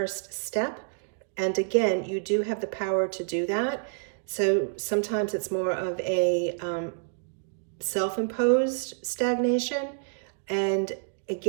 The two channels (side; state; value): left; silent; digital silence